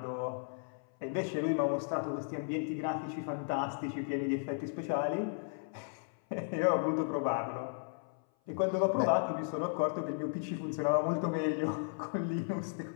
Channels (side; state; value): right; silent; 55 dB below the other